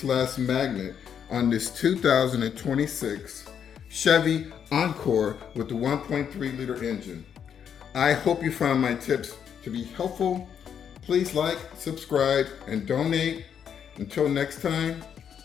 magnet on this 2026 Chevy Encore with the 1.3 liter engine. I hope you found my tips to be helpful. Please like, subscribe, and donate. Until next time,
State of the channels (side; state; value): right; quieter; 8.1 dB